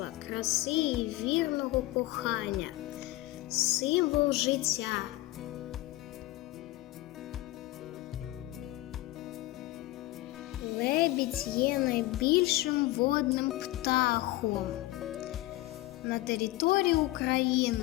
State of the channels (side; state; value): right; quieter; 18.0 dB